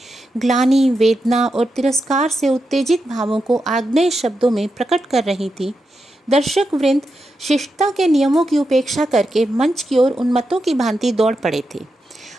ग्लानि, वेदना और तिरस्कार से उत्तेजित भावों को आग्नेय शब्दों में प्रकट कर रही थी, दर्शक वृंद शिष्टता के नियमों की उपेक्षा करके मंच की ओर उन्मत्तों की भांति दौड़ पड़े थे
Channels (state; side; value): normal; both; correlation 0.87